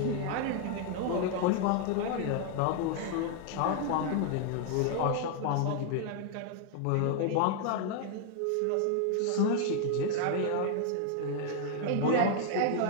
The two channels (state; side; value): different; both; correlation 0.00